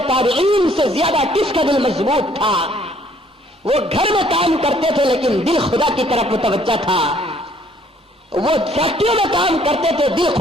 تابعین سے زیادہ کس کا دل مضبوط تھا. وہ گھر میں کام کرتے تھے لیکن دل خدا کی طرف متوجہ تھا. وہ فیکٹریوں میں کام کرتے تھے, دل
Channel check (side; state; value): both; normal; correlation 0.62